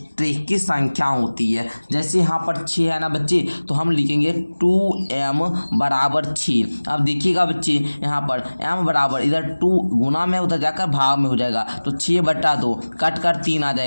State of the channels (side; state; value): both; inverted; correlation -1.00